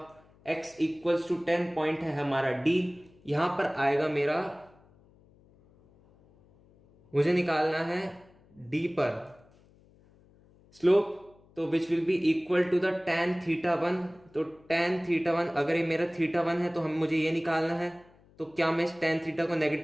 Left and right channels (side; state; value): left; noise; hum, 29 dB below the sound